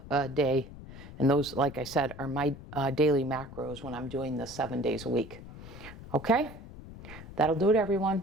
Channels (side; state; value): left; noise; rumble, 15 dB below the sound